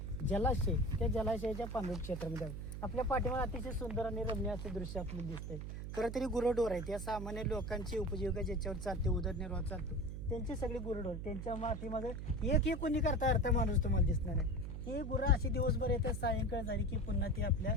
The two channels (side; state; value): right; noise; hum, 6 dB below the sound